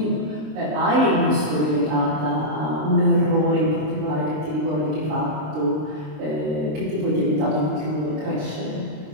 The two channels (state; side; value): late; left; 26 ms